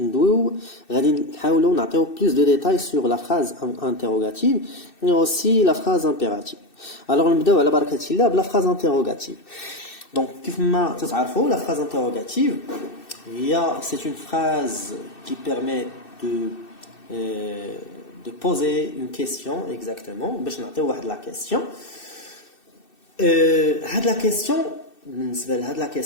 غادي نحاولوا نعطيو plus de détails sur la phrase interrogative et aussi la phrase impérative. Alors نبداو على بركة الله بلا phrase interrogative. Donc كيف ما تتعرفوا la phrase interrogative c'est une phrase qui permet de poser une question exactement باش نعطيو واحد la question. هاد la question بالنسبه لهاد لا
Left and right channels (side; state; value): right; late; 2.6 ms